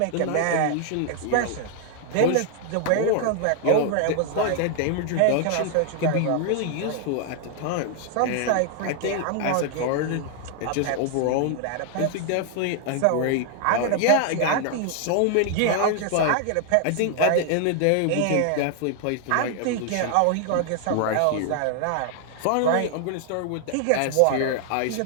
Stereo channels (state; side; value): different; both; correlation 0.00